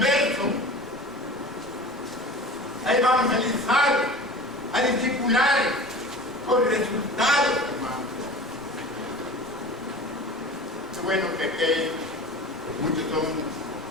a evangelizar, a discipular con resultados, hermano. Qué bueno que muchos son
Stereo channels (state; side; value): normal; both; correlation 0.37